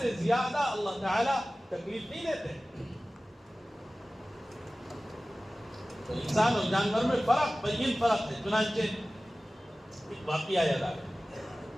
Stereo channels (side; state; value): both; normal; correlation 0.97